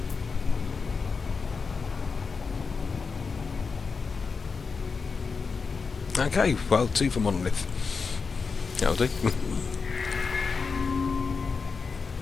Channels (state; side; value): quieter; right; 5.0 dB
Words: Okay, well, 2 for Monolith. That'll do.